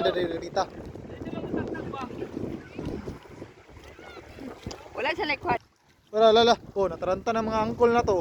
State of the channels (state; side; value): identical; both; correlation 1.00